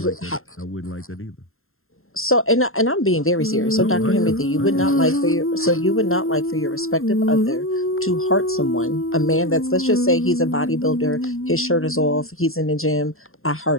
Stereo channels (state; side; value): late; right; 0.61 ms